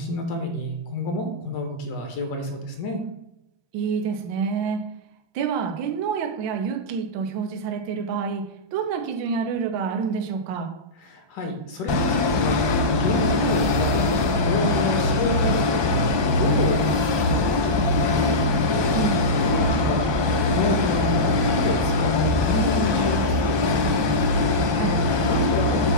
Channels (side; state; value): left; late; 1.2 ms